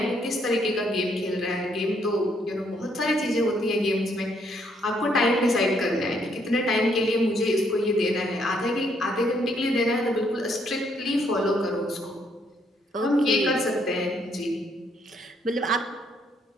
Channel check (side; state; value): both; normal; correlation 0.71